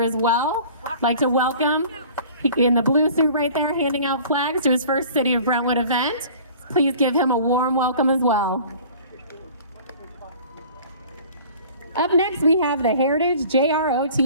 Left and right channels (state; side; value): inverted; both; correlation -0.47